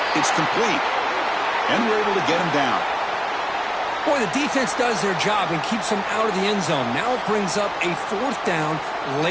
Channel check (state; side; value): identical; both; correlation 1.00